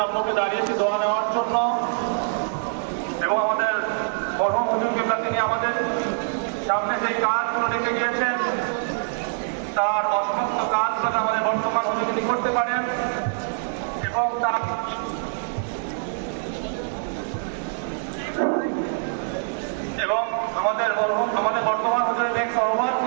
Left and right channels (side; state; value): left; silent; digital silence